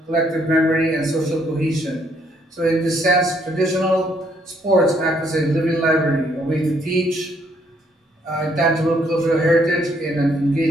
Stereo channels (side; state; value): both; normal; correlation 0.69